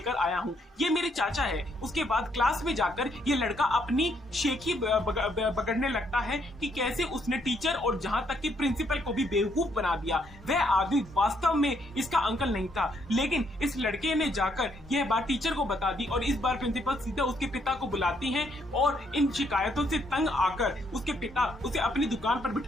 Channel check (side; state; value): both; normal; correlation 0.72